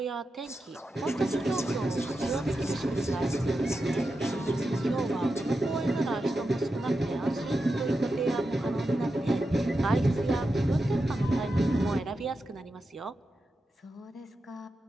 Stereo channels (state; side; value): normal; both; correlation 0.89